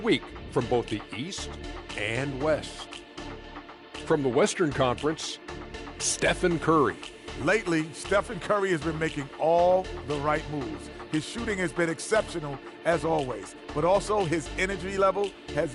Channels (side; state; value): both; identical; correlation 1.00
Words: from both the East and West. From the Western Conference, Stephen Curry. Lately, Stephen Curry has been making all the right moves. His shooting has been exceptional, as always, but also his energy level has